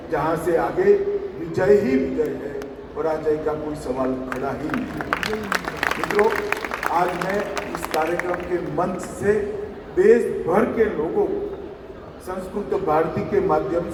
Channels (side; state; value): both; identical; correlation 1.00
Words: जहां से आगे विजय ही विजय है, पराजय का कोई सवाल खड़ा ही नहीं। मित्रों, आज मैं इस कार्यक्रम के मंच से देश भर के लोगों को संस्कृत भारती के माध्यम